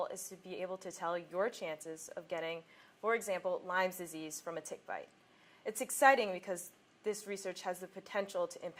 is to be able to tell your chances of getting, for example, Lyme's disease from a tick bite. It's exciting because this research has the potential to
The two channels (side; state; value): both; identical; correlation 1.00